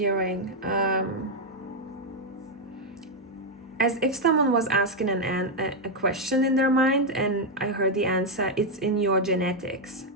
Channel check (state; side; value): normal; both; correlation 0.01